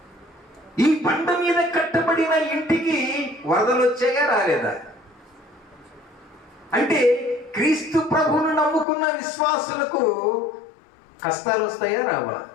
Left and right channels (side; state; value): right; drops out; at 8.8 s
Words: ఈ బండ మీద కట్టబడిన ఇంటికి వరదలు వచ్చాయా? రాలేదా? అంటే క్రీస్తు ప్రభువును నమ్ముకున్న విశ్వాసులకు కష్టాలు వస్తాయా రావా?